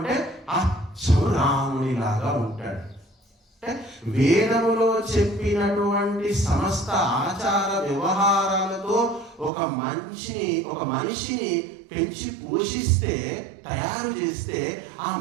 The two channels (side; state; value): left; drops out; at 9.5 s